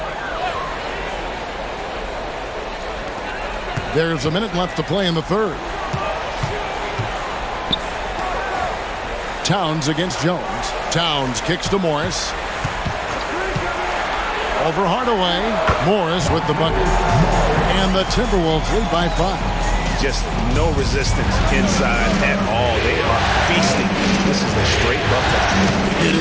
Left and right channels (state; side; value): identical; both; correlation 1.00